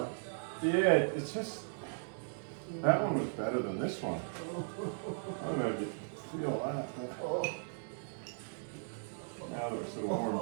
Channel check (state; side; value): silent; left; digital silence